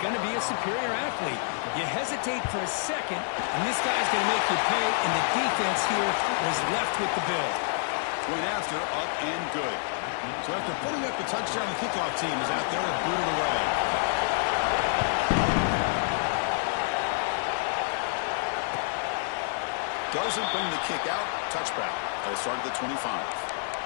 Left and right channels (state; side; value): silent; right; digital silence